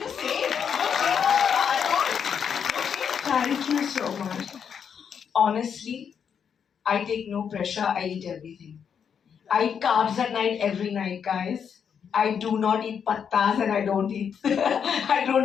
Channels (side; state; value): right; quieter; 7.4 dB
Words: same. Thank you so much. Honestly, I take no pressure. I eat everything. I eat carbs at night every night, guys. I do not eat pattas and I